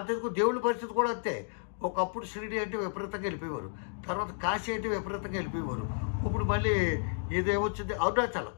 దేవుడి పరిస్థితి కూడా అంతే. ఒకప్పుడు షిరిడి అంటే విపరీతంగా వెళ్ళిపోయేవారు, తర్వాత కాశీ అంటే విపరీతంగా వెళ్ళిపోయేవారు. ఇప్పుడు మళ్ళీ ఇదేమొచ్చింది, అరుణాచలం,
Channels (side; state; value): right; silent; digital silence